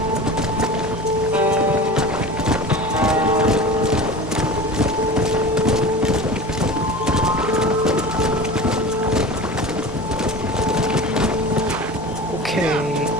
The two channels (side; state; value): both; normal; correlation 0.33